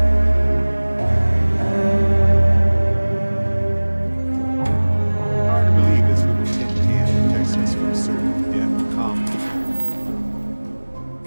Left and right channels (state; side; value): inverted; both; correlation -1.00